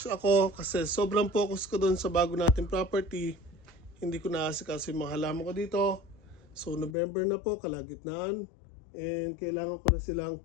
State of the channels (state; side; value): drops out; right; at 7.0 s